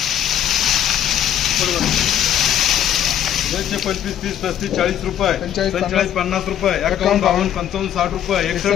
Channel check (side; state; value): right; quieter; 10.3 dB